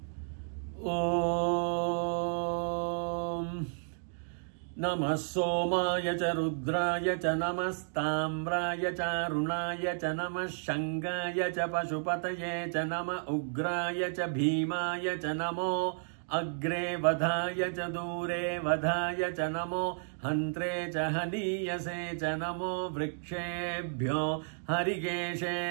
ஓம் நம சோமாய ச ருத்ராய ச நமஸ்தாம்ராய ச அருணாய ச நம சங்காய ச பசுபதயே ச நம உக்ராய ச பீமாய ச நமோ அக்ரே வதாய ச தூரே வதாய ச நமோ ஹந்த்ரே ச ஹனீயசே ச நமோ விருக்ஷேभ्यो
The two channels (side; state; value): left; silent; digital silence